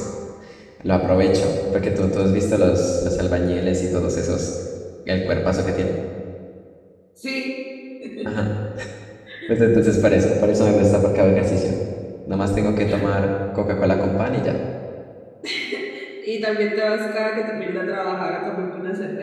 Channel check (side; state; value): both; identical; correlation 1.00